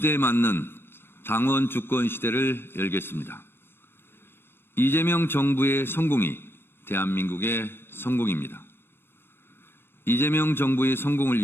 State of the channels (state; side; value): late; right; 0.11 ms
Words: 맞는 당원 주권 시대를 열겠습니다. 이재명 정부의 성공이 대한민국의 성공입니다. 이재명 정부의 성공을